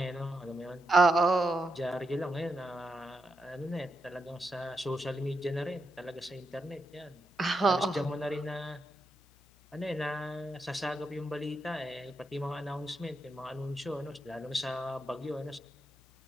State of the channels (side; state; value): left; noise; hum, 28 dB below the sound